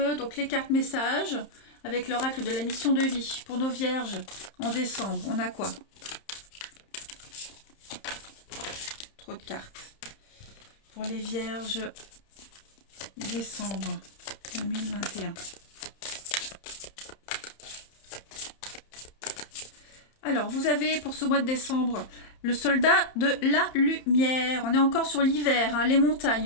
donc les cartes messages avec l'oracle de la mission de vie pour nos vierges en décembre. On a quoi? Trop de cartes. Pour les vierges, décembre 2021. Alors, vous avez pour ce mois de décembre le soldat de la lumière. On est encore sur l'hiver, hein, les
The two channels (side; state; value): right; late; 31 ms